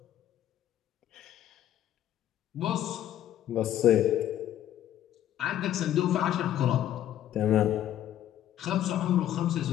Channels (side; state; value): right; quieter; 11.8 dB